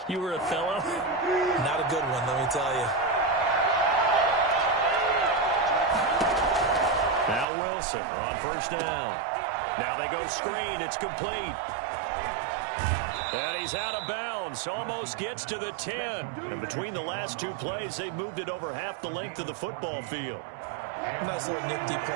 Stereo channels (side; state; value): left; drops out; at 7.5 s